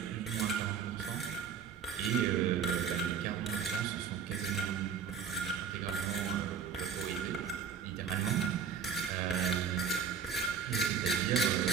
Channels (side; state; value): left; quieter; 6.9 dB